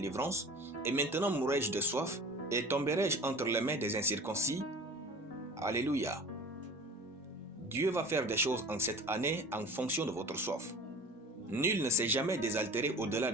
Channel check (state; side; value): normal; both; correlation 0.41